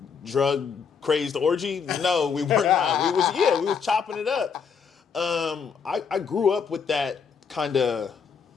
drug crazed orgy? No, we were not. We was chopping it up. I grew up with that kind of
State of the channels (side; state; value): right; quieter; 6.3 dB